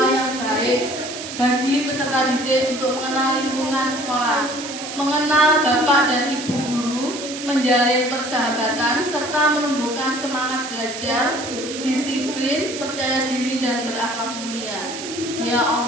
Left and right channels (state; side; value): noise; right; hiss, 9 dB below the sound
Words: yang baik bagi peserta didik untuk mengenal lingkungan sekolah, mengenal Bapak dan Ibu guru, menjalin persahabatan, serta menumbuhkan semangat belajar, disiplin, percaya diri, dan berakhlak mulia. Ya